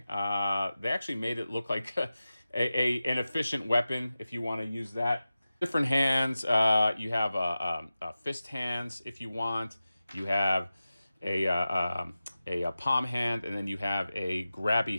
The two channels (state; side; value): inverted; both; correlation -0.95